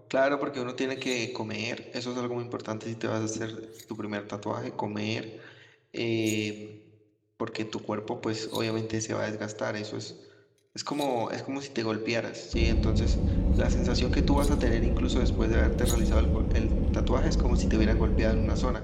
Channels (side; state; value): both; identical; correlation 1.00